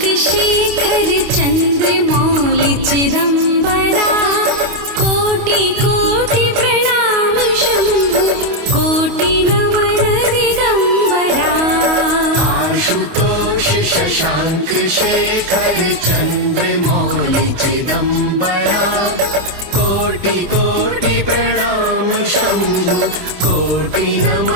शेखर चन्द्रमौलि चिदम्बरा कोटि कोटि प्रणाम शम्भु कोटि नमन दिगम्बरा आशुतोष शशाङ्क शेखर चन्द्रमौलि चिदम्बरा कोटि कोटि प्रणाम शम्भु कोटि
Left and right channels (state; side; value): late; left; 28 ms